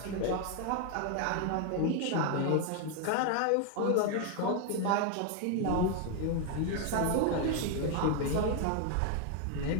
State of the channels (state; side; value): different; both; correlation 0.01